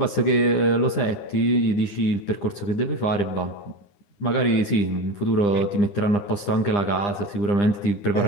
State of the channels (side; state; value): right; late; 9.9 ms